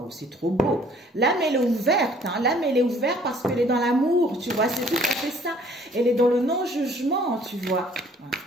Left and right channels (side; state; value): both; normal; correlation 0.57